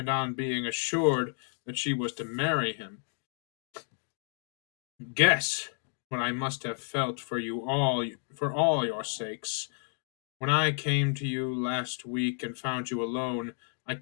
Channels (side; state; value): right; silent; 57 dB below the other